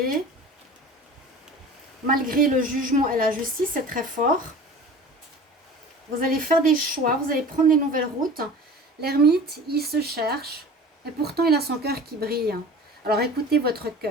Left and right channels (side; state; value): both; normal; correlation 0.40